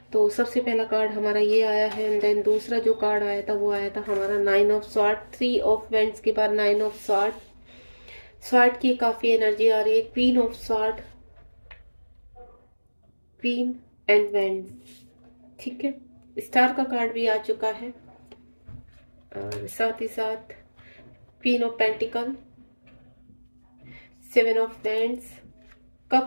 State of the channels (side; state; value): both; inverted; correlation -1.00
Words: तो सबसे पहला कार्ड हमारा ये आया है, एंड देन दूसरा जो कार्ड आया था वो आया था हमारा 9 ऑफ स्वॉर्ड। 3 ऑफ वेंट्स के बाद 9 ऑफ स्वॉर्ड। स्वॉर्ड की काफ़ी एनर्जी आ रही है। Queen of sword, queen and vents, ठीक है। स्टार का कार्ड भी आ चुका है, और साथ ही साथ queen of pentacle, 7 of wands,